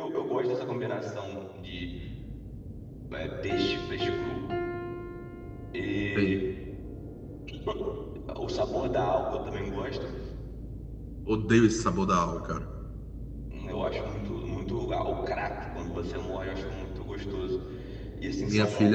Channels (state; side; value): identical; both; correlation 1.00